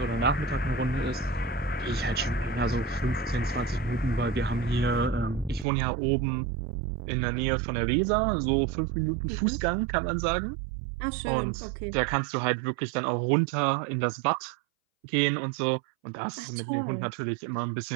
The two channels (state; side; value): drops out; left; at 5.7 s